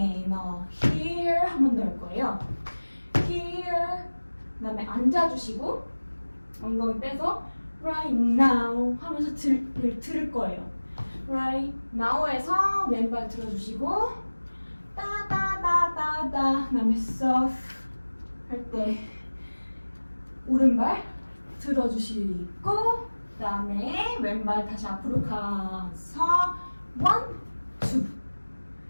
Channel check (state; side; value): inverted; both; correlation -1.00